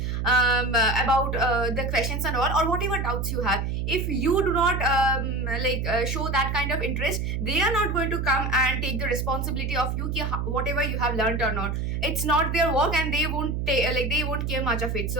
about the questions and all, or whatever doubts you have. If you do not show that kind of interest, they are not going to come and take the responsibility of you ki whatever you have learned or not. It's not their work, and they won't care much of it.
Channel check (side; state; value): right; noise; hum, 1 dB below the sound